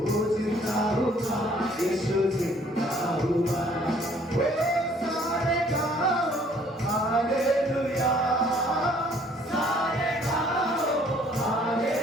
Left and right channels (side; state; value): both; normal; correlation 0.60